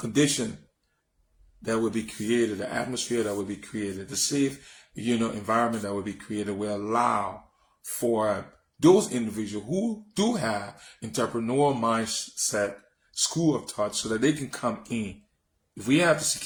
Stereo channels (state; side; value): identical; both; correlation 1.00